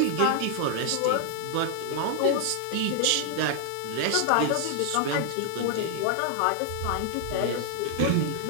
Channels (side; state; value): both; different; correlation 0.00